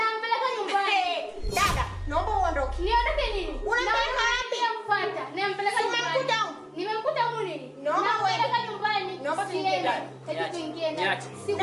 nyumbani. Dada, naomba uondoke. Niondoke nini? Unampeleka wapi? Nampata. Nampeleka nyumbani. Nimemkuta huko nini? Nampeleka nyumbani. Naomba tuingie ndani. Hebu tuingie ndani.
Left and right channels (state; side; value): identical; both; correlation 1.00